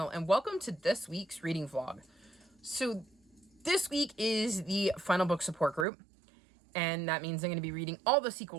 and welcome to this week's reading vlog. So this week is the final book support group, and that means I'm going to be reading all the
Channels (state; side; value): drops out; left; at 5.9 s